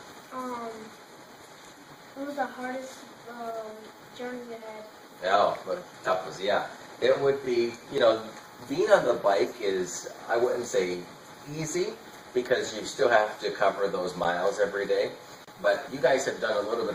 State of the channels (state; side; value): identical; both; correlation 1.00